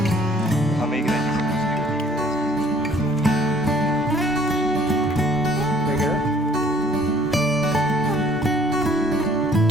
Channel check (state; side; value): noise; right; hum, 26 dB below the sound